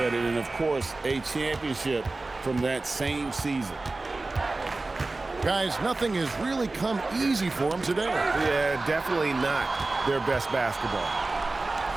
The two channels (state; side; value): quieter; left; 3.3 dB